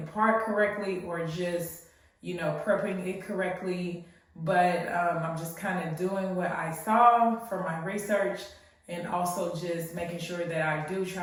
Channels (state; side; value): identical; both; correlation 1.00